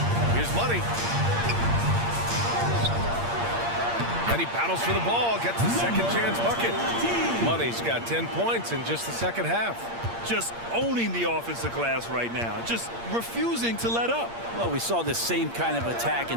Here's Money. And he battles for the ball, gets the second chance bucket. Money's got 10 points in just the second half. Just owning the offensive glass right now. Just refusing to let up. Well, we saw this same kind of attack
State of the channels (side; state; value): left; late; 8.6 ms